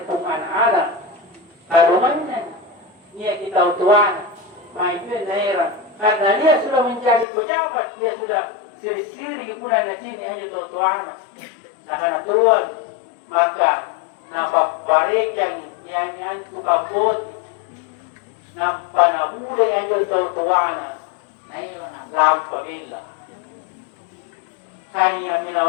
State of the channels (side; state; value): right; drops out; at 7.2 s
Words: pong anak-anak, karuman niya kita utuan, may yun na heran. Karena dia sudah menjadi pejabat, dia sudah siri-siri ipunan na sini hanya tutuan. Nakanatuan, maka napaparikan yan tukang boti. Nang panahuli ang yung tutuwana na ilang lampagila. Kaya